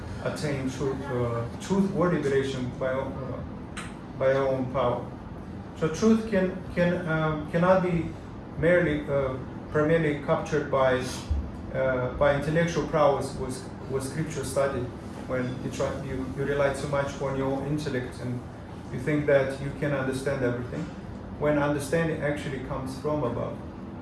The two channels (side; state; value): both; identical; correlation 1.00